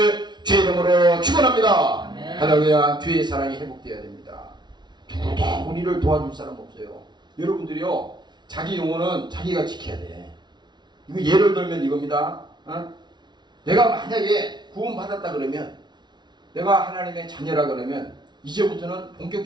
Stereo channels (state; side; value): late; left; 0.21 ms